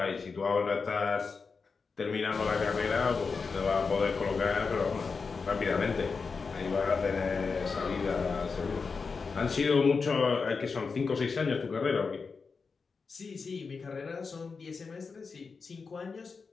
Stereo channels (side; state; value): right; quieter; 4.9 dB